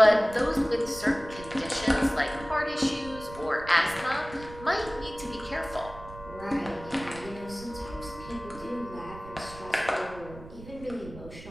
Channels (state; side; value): noise; right; rumble, 15 dB below the sound